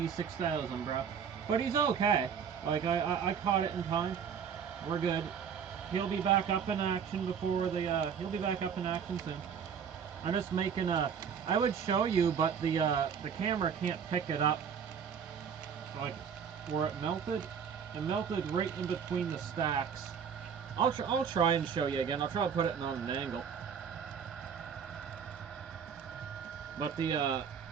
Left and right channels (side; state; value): left; quieter; 7.2 dB